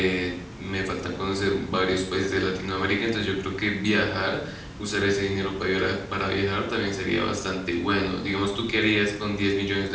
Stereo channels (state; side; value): identical; both; correlation 1.00